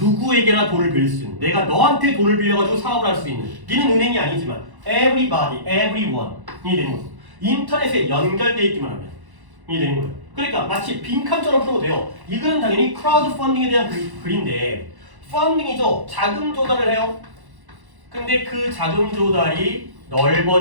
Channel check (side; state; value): left; late; 1.1 ms